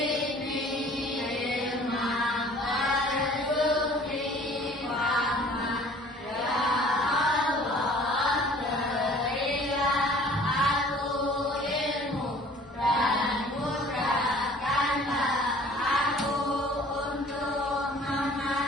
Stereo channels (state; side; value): normal; both; correlation 0.51